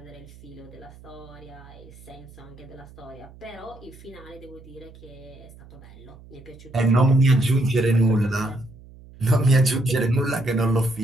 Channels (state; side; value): noise; right; hum, 21 dB below the sound